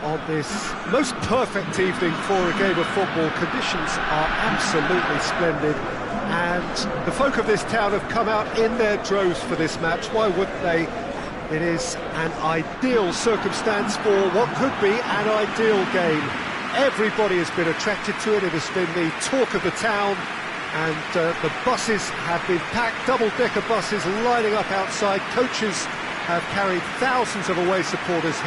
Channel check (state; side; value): identical; both; correlation 1.00